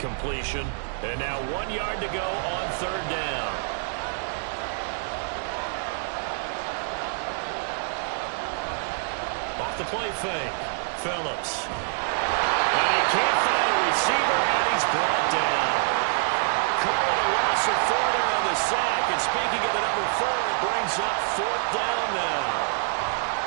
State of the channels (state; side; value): silent; left; digital silence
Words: And now 1 yard to go on 3rd down. Off the play fake, Phillips. And he can't find a receiver, and he's brought down. Calling a loss of 4 there on the sack. And speaking of the number 4, it brings up 4th down now.